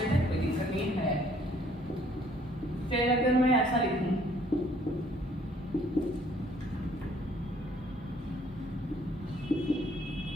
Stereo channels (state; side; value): normal; both; correlation 0.61